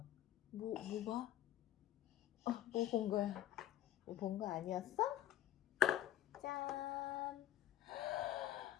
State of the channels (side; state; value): right; quieter; 13.1 dB